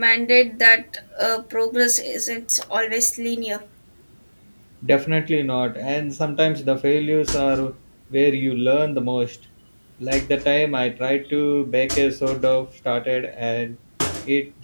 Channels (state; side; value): inverted; both; correlation -1.00